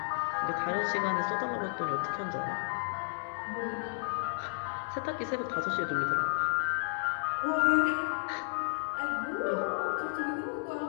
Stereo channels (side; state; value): right; silent; digital silence